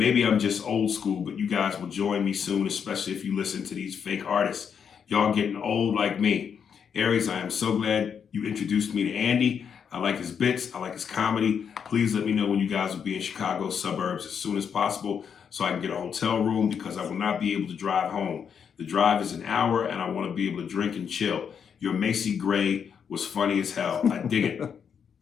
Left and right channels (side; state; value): right; quieter; 7.2 dB